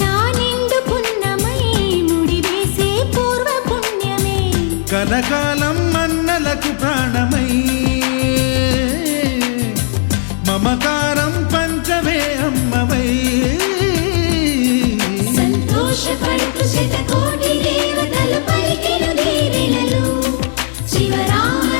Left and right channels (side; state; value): right; silent; digital silence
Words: నిండు పున్నమై ముడివేసే పూర్వ పుణ్యమే కలకాలం మన్నలకు ప్రాణమై మమకారం పంచవే అమ్మవై సంతోషపడుతు శతకోటి దేవతలు పలికెను దీవెనలు